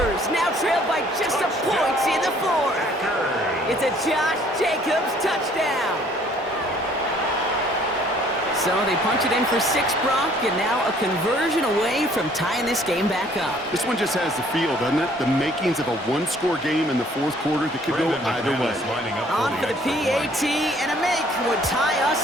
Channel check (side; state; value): both; normal; correlation 0.59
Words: now trail by just a point in the 4th. It's a Josh Jacobs touchdown. So they punch it in for 6, Brock, and now a conversion away from tying this game back up. This one just has the feel, doesn't it? The makings of a one-score game in the 4th quarter that could go either way. Lining up On for the PAT, and a make would tie us